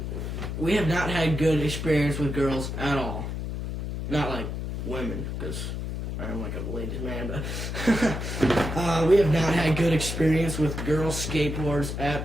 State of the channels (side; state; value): left; noise; hum, 4 dB below the sound